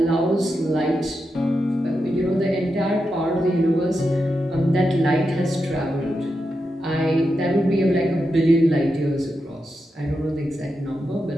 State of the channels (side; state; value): both; normal; correlation 0.87